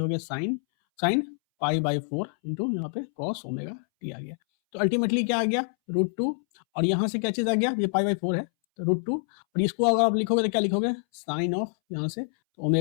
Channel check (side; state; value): right; silent; 60 dB below the other